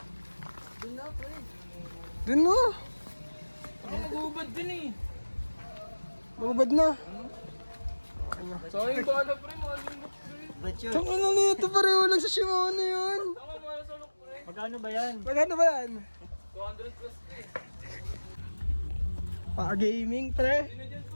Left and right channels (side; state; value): both; inverted; correlation -1.00